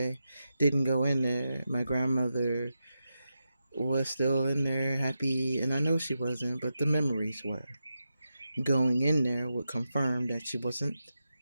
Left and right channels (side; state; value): both; inverted; correlation -0.88